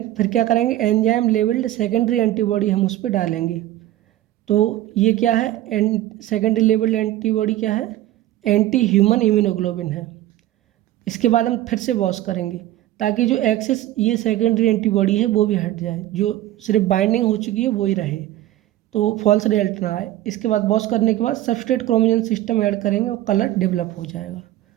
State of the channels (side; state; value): left; quieter; 14.4 dB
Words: फिर क्या करेंगे, एंजाइम लेवल्ड सेकेंडरी एंटीबॉडी हम उस पर डालेंगे। तो ये क्या है, सेकेंडरी लेवल्ड एंटीबॉडी क्या है, एंटी ह्यूमन इम्यूनोग्लोबिन है। इसके बाद हम फिर से बॉस करेंगे ताकि जो एक्सेस ये सेकेंडरी एंटीबॉडी है वो भी हट जाए, जो सिर्फ बाइंडिंग हो चुकी है वो ही रहे, तो फॉल्स रिजल्ट ना आए। इसके बाद बॉस करने के बाद सबस्ट्रेट क्रोमोजन सिस्टम ऐड करेंगे और कलर डेवलप हो जाएगा।